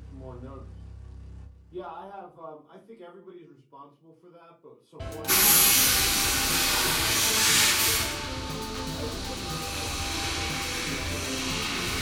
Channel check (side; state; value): both; identical; correlation 1.00